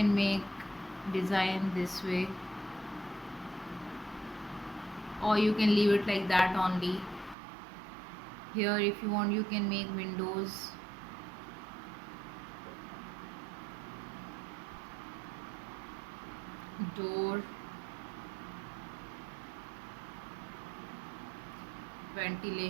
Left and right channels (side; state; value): left; drops out; at 7.4 s